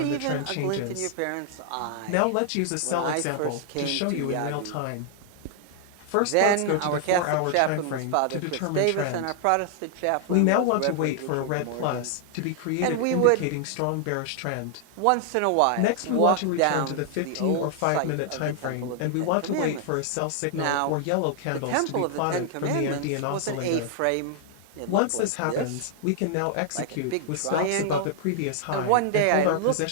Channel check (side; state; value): both; different; correlation 0.00